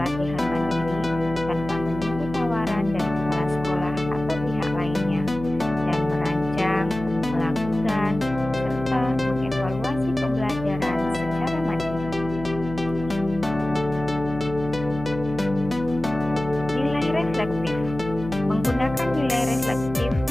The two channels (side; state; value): left; noise; hum, 10 dB below the sound